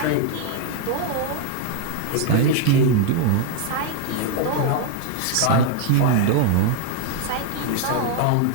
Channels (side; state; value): both; different; correlation 0.01